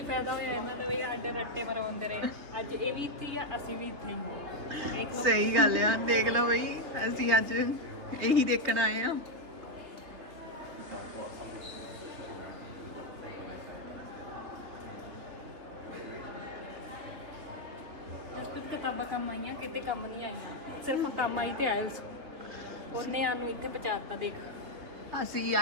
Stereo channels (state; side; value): late; left; 3.6 ms